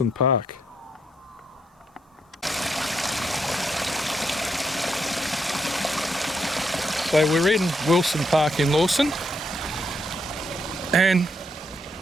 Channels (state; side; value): normal; both; correlation 0.77